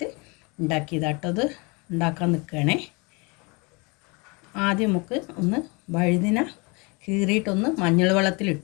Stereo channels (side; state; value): right; quieter; 29.0 dB